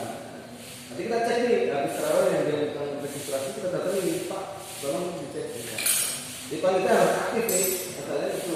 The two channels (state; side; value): identical; both; correlation 1.00